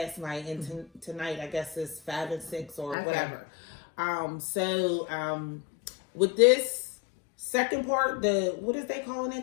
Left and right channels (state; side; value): drops out; right; at 3.0 s